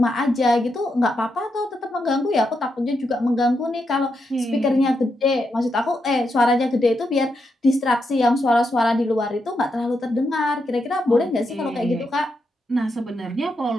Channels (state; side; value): normal; both; correlation 0.83